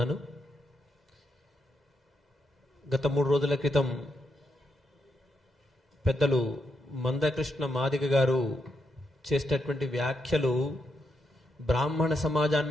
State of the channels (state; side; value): normal; both; correlation 0.81